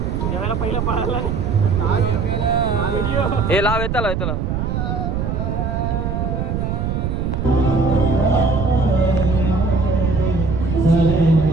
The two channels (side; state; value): right; noise; rumble, 2 dB below the sound